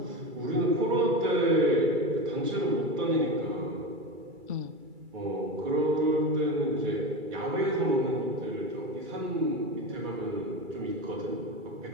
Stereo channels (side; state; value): left; late; 2.3 ms